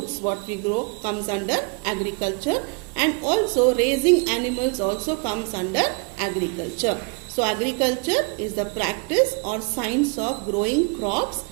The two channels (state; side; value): quieter; left; 33.7 dB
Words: what we grow comes under agriculture, and also raising animals also comes under agriculture. So agriculture is the practice or science of growing crops